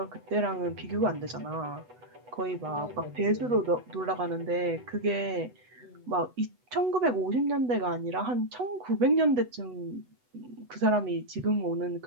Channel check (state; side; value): late; left; 8.1 ms